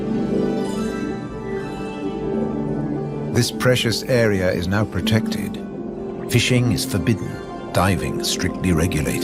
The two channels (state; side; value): identical; both; correlation 1.00